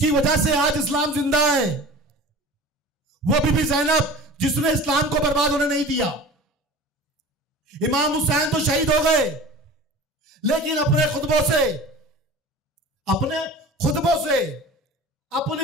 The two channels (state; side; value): normal; both; correlation 0.38